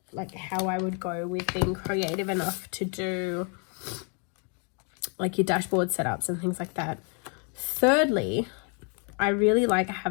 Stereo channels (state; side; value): quieter; right; 38.0 dB